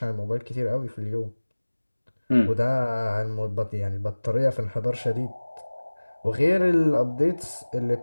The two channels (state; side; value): inverted; both; correlation -1.00